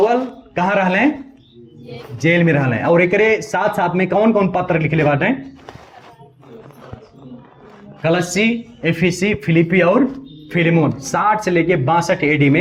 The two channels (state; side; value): identical; both; correlation 1.00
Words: कहाँ रहा, जेल में रहा। और एक साथ साथ में कौन कौन पत्र लिखले बाटे, कलस्सी, एफिसी, फिलिपी और फिलेमोन 60 से लेके 62 एडी